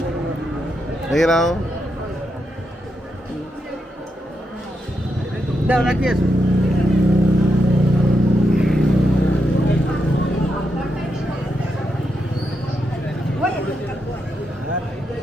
দেখে নাও দাও রাখি আসো।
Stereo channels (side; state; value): both; normal; correlation 0.83